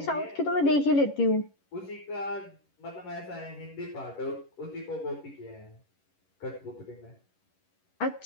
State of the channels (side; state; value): right; late; 11 ms